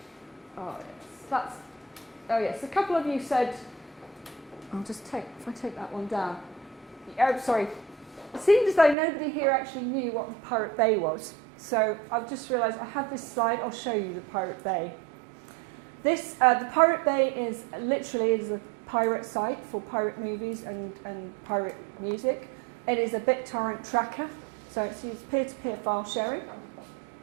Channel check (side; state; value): left; drops out; at 9.0 s